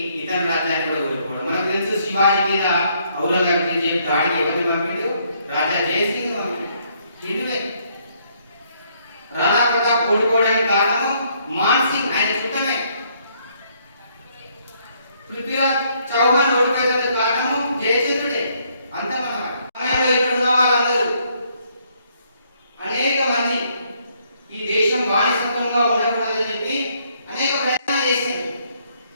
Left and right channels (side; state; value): both; inverted; correlation -0.69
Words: ఇతర రాజ్యాన్ని కూడా కోల్పోవడం. మనకు తెలుసు, శివాజీ మీద ఔరంగజేబు దాడికి ఎవరు పంపిడు? రాజా జయసింగ్ హిందువే. రాణా ప్రతాప్ ఓడిపోవడానికి కారణము మాన్ సింగ్, ఆయన చుట్టమే. పృథ్వీరాజ్ చౌహాన్ మంది ఈ దేశం బానిసత్వంగా ఉండకూడదని చెప్పి అనేక ప్రయత్నాలు చేసింది.